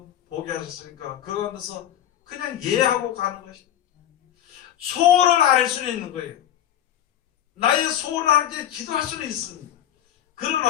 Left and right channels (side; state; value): right; quieter; 11.2 dB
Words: 보게 하셨으니까 그 가운데서 그냥 예하고 가는 것입니다. 소원을 알 수는 있는 거예요. 나의 소원을 하나님께 기도할 수는 있습니다.